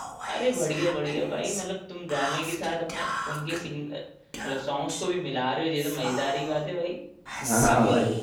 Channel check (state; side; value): identical; both; correlation 1.00